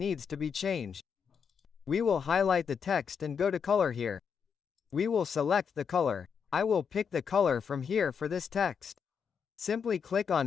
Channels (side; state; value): right; quieter; 6.7 dB